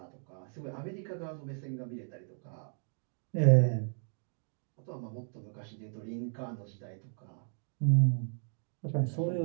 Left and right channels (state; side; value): silent; left; digital silence